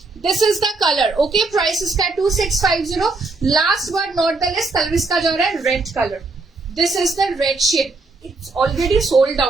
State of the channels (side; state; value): left; quieter; 3.6 dB